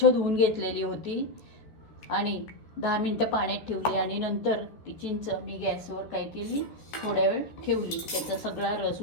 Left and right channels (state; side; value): late; right; 13 ms